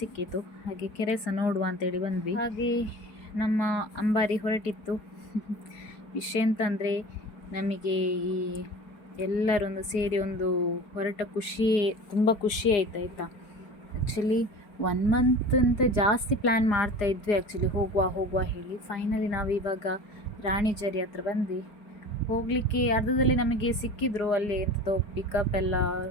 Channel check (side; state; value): right; late; 4.8 ms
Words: ಹಾಗೆ ಕೆರೆ ಸಹ ನೋಡುವ ಅಂತೇಳಿ ಬಂದ್ವಿ. ಹಾಗೆ ನಮ್ಮ ಅಂಬಾರಿ ಹೊರಟಿತ್ತು. ವಿಷಯ ಅಂತಂದರೆ ನಮಗೆ ಈ ಎಲ್ಲರೊಂದು ಸೇರಿ ಒಂದು ಹೊರಟ ತುಂಬ ಖುಷಿ ಆಯ್ತು, ಆಯಿತಾ. ಆ್ಯಕ್ಚುಲಿ 1 ಮಂತ್ ಅಂತ ಜಾಸ್ತಿ ಪ್ಲ್ಯಾನ್ ಮಾಡ್ತಾಯಿದ್ವಿ ಆ್ಯಕ್ಚುಲಿ, ಹೋಗುವ ಹೇಳಿ. ಫೈನಲಿ ನಾವು ಇವಾಗ ರಾಣಿಜರಿ ಹತ್ರ ಬಂದ್ವಿ. ಹೋಗಲಿಕ್ಕೆ ಅರ್ಧದಲ್ಲಿ ನಮಗೆ ಸಿಕ್ಕಿದ್ರು ಅಲ್ಲಿ ಎಂಥದೋ ಪಿಕಪ್ ಎಲ್ಲ,